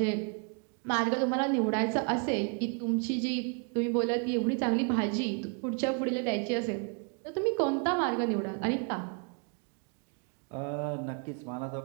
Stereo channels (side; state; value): left; quieter; 37.9 dB